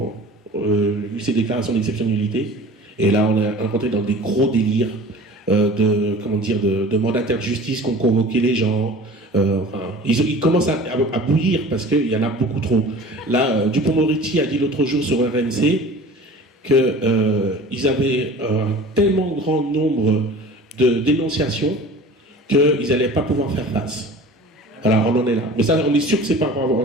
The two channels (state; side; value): normal; both; correlation 0.42